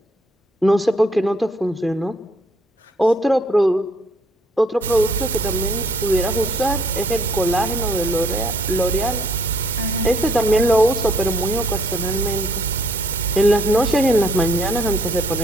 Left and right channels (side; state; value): both; normal; correlation 0.64